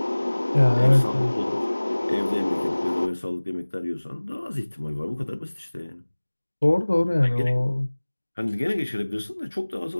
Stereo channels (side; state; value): both; inverted; correlation -1.00